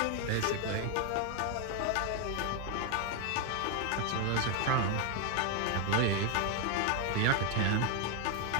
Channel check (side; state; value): both; different; correlation 0.01